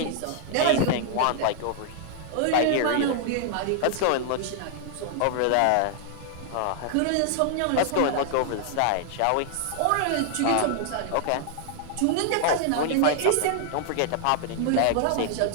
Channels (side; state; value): both; different; correlation 0.00